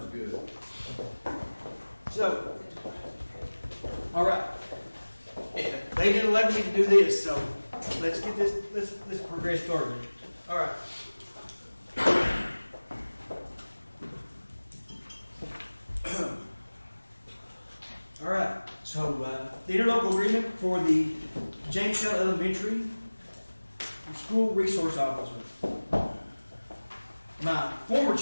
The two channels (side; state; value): both; inverted; correlation -1.00